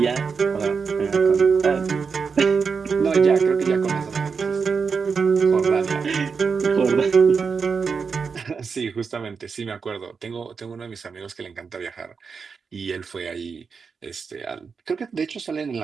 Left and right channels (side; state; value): left; quieter; 5.5 dB